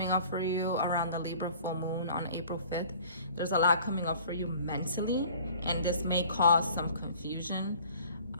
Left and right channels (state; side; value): inverted; both; correlation -0.50